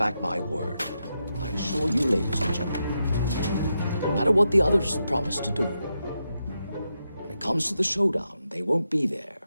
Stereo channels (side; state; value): both; inverted; correlation -0.85